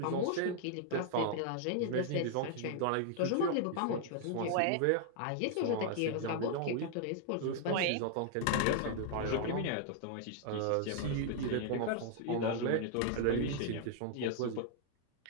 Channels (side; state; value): both; different; correlation 0.00